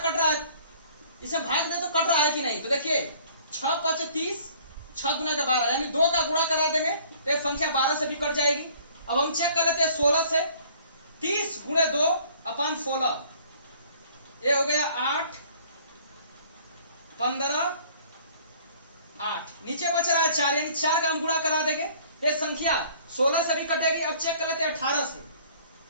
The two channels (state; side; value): inverted; both; correlation -0.54